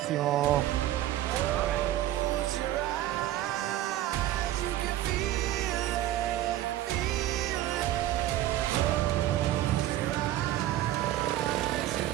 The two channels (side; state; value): left; quieter; 13.7 dB